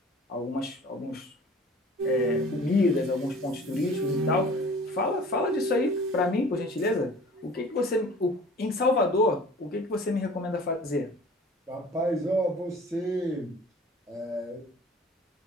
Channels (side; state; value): both; normal; correlation 0.46